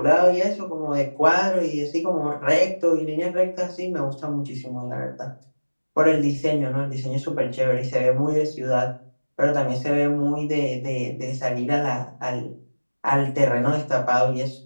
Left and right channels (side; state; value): both; inverted; correlation -1.00